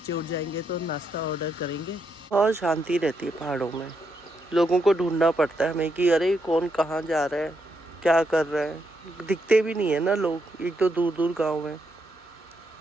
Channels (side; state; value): both; normal; correlation 0.79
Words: उठ जाएंगे तो नाश्ता ऑर्डर करेंगे। और शांति रहती है पहाड़ों में। लोगों को ढूंढना पड़ता है हमें कि अरे कौन कहाँ जा रहा है, क्या कर रहा है। दिखते भी नहीं है ना लोग, एक तो दूर दूर गांव है।